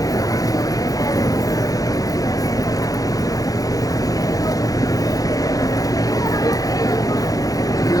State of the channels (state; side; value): late; right; 0.17 ms